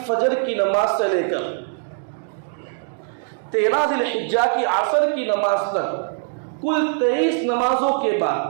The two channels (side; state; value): left; silent; digital silence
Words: فجر کی نماز سے لے کر 13 ذی الحجہ کی عصر کی نماز تک کل 23 نمازوں کے